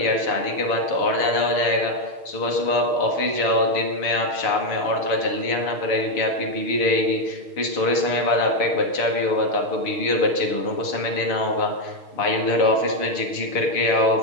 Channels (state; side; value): late; right; 6.5 ms